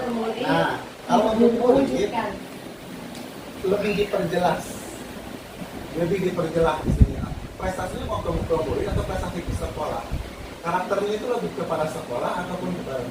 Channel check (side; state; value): both; identical; correlation 1.00